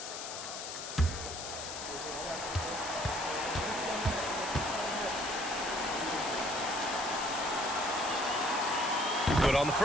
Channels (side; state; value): left; noise; hiss, 7 dB below the sound